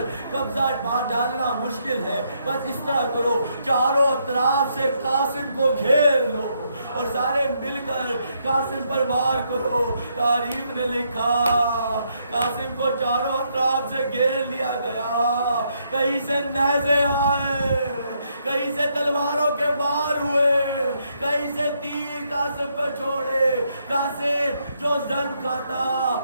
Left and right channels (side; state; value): both; inverted; correlation -0.75